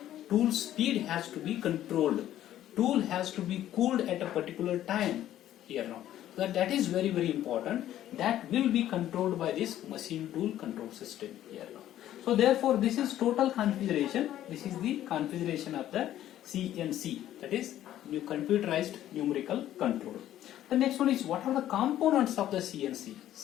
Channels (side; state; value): right; quieter; 12.5 dB